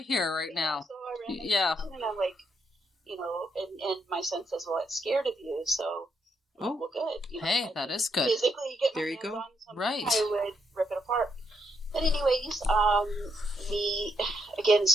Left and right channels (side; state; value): both; normal; correlation 0.77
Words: here right now. So I ran yeah. And I'm like, and my son says, well, it's scared of you. So, well, good. Hey, that is good. Physically get my there you hands go. on something, Right. I would rip it apart. But anyways,